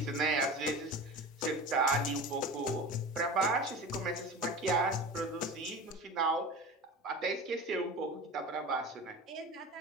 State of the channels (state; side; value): normal; both; correlation 0.32